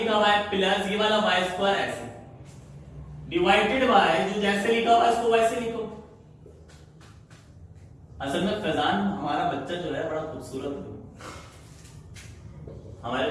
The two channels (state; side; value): identical; both; correlation 1.00